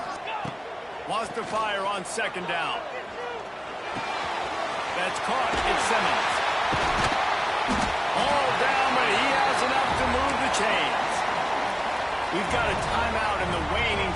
Wants to fire on 2nd down. That's caught. It's Simmons. All down, but he has enough to move the chains. We've got a timeout in the waning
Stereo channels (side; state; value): both; identical; correlation 1.00